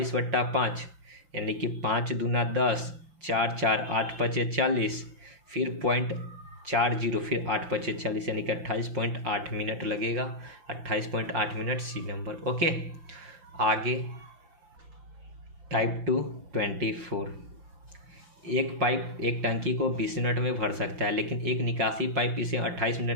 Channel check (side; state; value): left; late; 5.9 ms